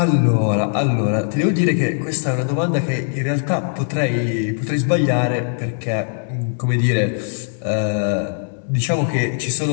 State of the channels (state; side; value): silent; right; digital silence